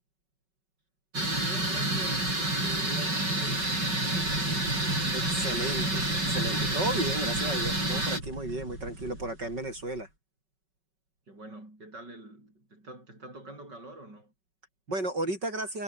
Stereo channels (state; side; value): late; left; 5.3 ms